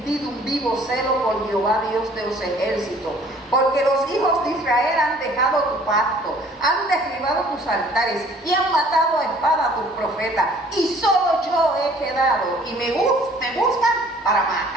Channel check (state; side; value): normal; both; correlation 0.55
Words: un vivo celo por Jehová, Dios de los ejércitos, porque los hijos de Israel han dejado tu pacto, han derribado tus altares y han matado a espada a tus profetas, y solo yo he quedado, y me buscan para